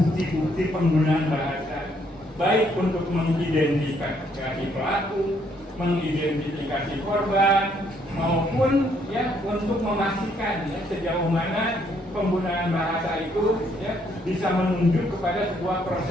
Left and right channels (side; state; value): both; normal; correlation 0.69